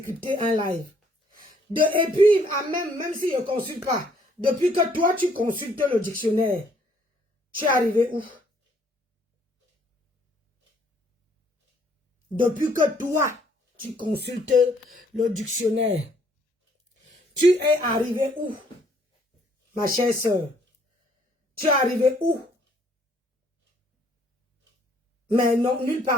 un live. Et puis, même si je ne consulte pas, depuis que toi, tu consultes le dictionnaire, tu es arrivé où? Depuis que toi, tu consultes le dictionnaire, tu es arrivé où? Ma chère soeur, tu es arrivé où? Mais non, nulle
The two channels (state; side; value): normal; both; correlation 0.65